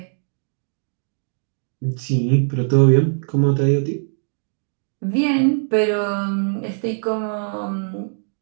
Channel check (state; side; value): silent; left; digital silence